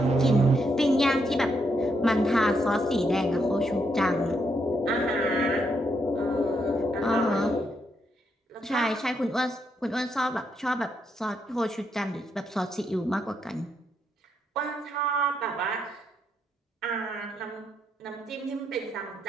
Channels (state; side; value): normal; both; correlation 0.78